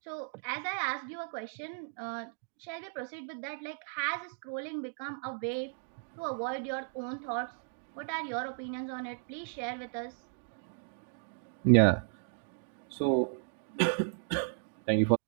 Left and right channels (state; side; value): silent; left; digital silence